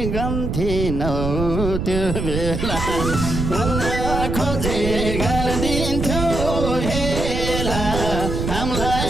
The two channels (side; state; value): right; noise; rumble, 3 dB below the sound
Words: गन्थिनौ त्यो बेला बोल्न खोजे गरिदिन्थ्यो हेला